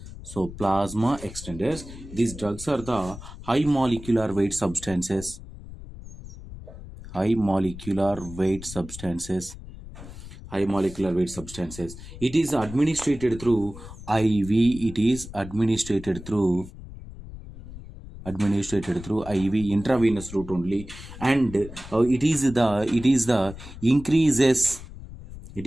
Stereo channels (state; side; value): noise; left; rumble, 14 dB below the sound